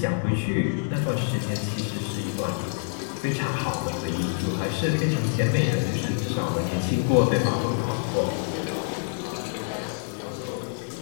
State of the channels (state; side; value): silent; right; digital silence